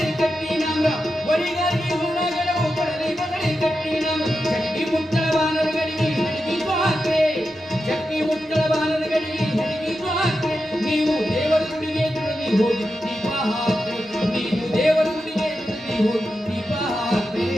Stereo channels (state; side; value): normal; both; correlation 0.89